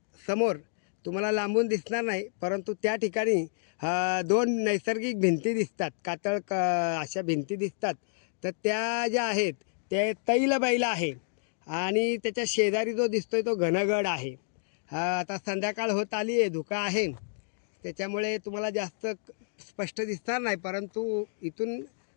समोर तुम्हाला लांबून दिसणार नाही, परंतु त्या ठिकाणी दोन नैसर्गिक भिंती दिसतात, अशा भिंती दिसतात. तर त्या ज्या आहेत ते तैलबैल आहे आणि त्याच्या शेजारी जो दिसतोय तो घनगड आहे. आता संध्याकाळ होत आली आहे, धुका आहे, त्याच्यामुळे तुम्हाला जास्त स्पष्ट दिसणार नाही, परंतु इथून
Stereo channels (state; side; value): silent; right; digital silence